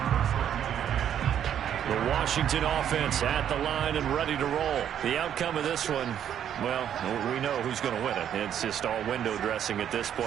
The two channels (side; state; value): left; quieter; 9.6 dB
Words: The Washington offense at the line and ready to roll. The outcome of this one, well, we know who's going to win it. It's just all window dressing at this